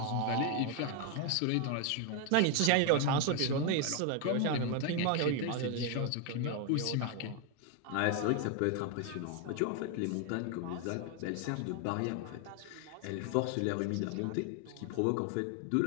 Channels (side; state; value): both; different; correlation 0.01